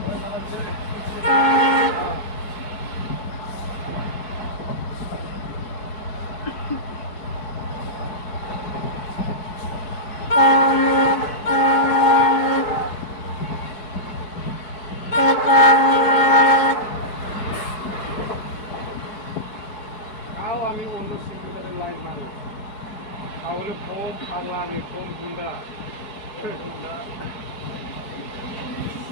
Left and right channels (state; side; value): late; right; 4.7 ms